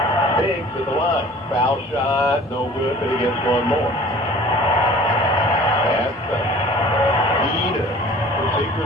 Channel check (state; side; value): normal; both; correlation 0.46